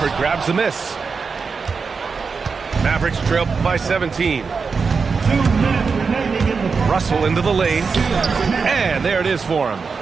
grabs the miss. Mavericks trail by 17. Russell into the lane. And there it is for him.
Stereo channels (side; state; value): left; quieter; 5.1 dB